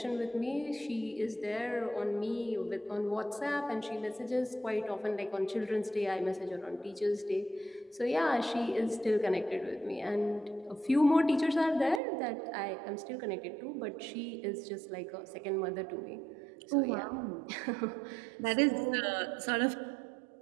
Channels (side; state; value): left; drops out; at 12.0 s